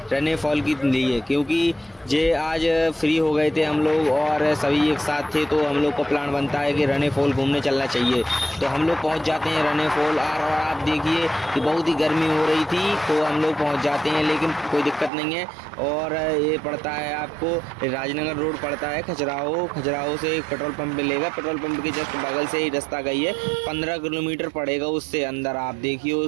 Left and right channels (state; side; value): drops out; left; at 15.1 s